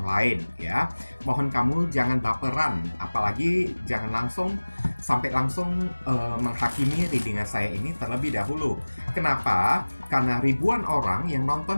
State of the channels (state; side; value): inverted; both; correlation -1.00